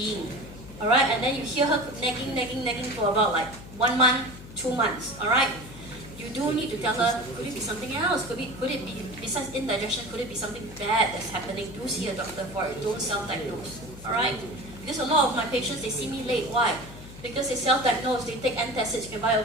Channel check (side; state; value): left; noise; hum, 16 dB below the sound